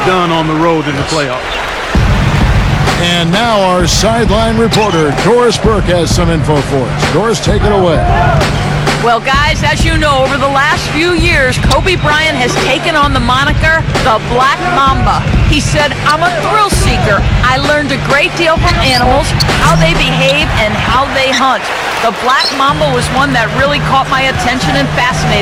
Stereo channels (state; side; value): identical; both; correlation 1.00